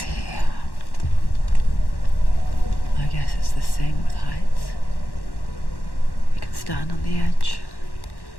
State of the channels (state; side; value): late; right; 1.1 ms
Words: here. I guess it's the same with heights. stand on the edge.